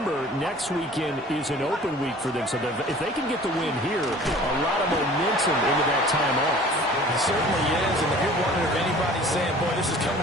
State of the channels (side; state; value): both; normal; correlation 0.47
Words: next weekend is an open week for them. So if they can get the win here, a lot of momentum into that time off. It certainly is. And if you're wondering if anybody's saying, boy, this is coming